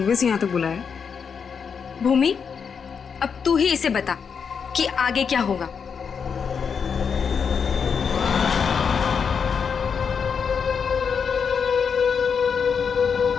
से यहाँ तक बुलाया? भूमि, अब तू ही इसे बता कि आगे क्या होगा।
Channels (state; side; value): quieter; right; 6.4 dB